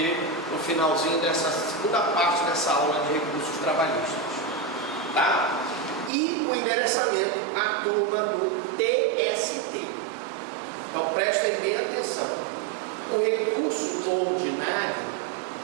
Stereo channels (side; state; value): left; drops out; at 6.1 s